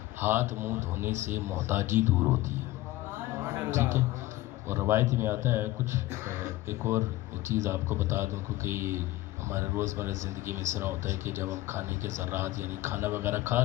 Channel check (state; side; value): quieter; right; 17.0 dB